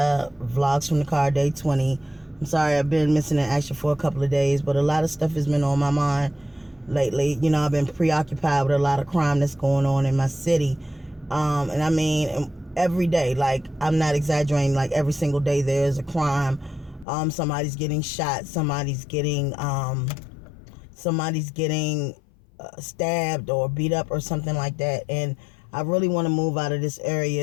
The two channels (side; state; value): right; drops out; at 17.1 s